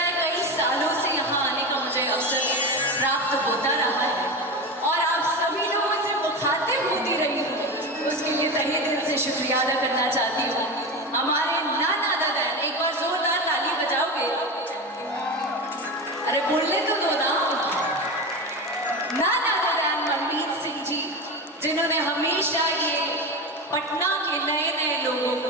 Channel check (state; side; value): normal; both; correlation 0.22